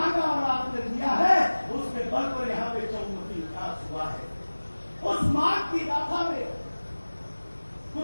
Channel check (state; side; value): inverted; both; correlation -1.00